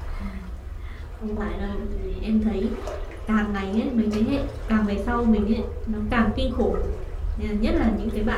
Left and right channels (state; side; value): identical; both; correlation 1.00